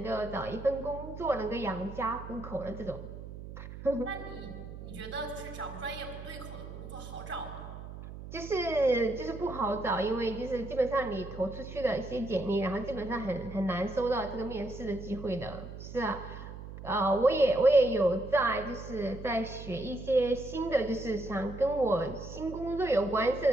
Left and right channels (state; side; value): noise; right; hum, 12 dB below the sound